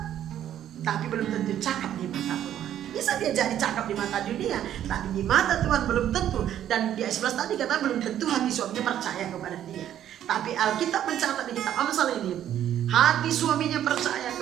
tapi belum tentu cakap di mata Tuhan. Bisa dia jadi cakap di mata dunia, tapi di mata Tuhan belum tentu. Dan di ayat 11 tadi kata belum tentu hati suaminya percaya kepada dia. Tapi Alkitab mencatat di kitab Amsal ini, hati suaminya percaya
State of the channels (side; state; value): left; quieter; 11.0 dB